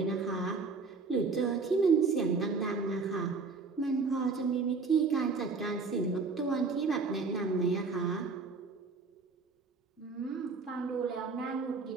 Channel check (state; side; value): quieter; left; 4.4 dB